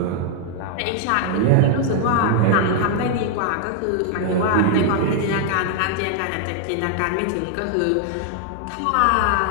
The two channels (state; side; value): different; both; correlation 0.00